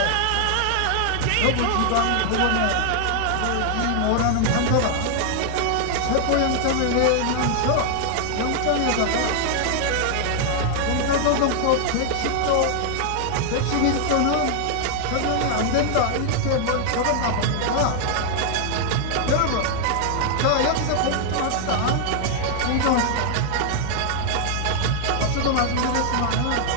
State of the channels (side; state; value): both; different; correlation 0.00